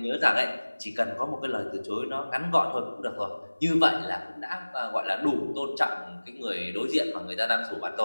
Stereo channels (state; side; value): inverted; both; correlation -1.00